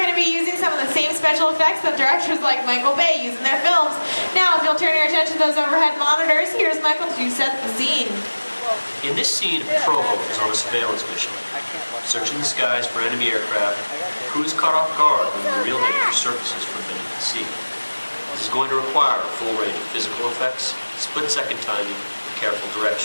to be using some of the same special effects that directors like Michael Bay use in their films. Now, if you'll turn your attention to those overhead monitors, here's Michael to set the scene. In this scene, a patrol boat is on a surveillance mission, searching the skies for enemy aircraft. The crew is caught off guard when the real nature surfaces from beneath the sea. This is going to require a full range of physical effects, split-second timing, and careful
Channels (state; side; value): inverted; both; correlation -1.00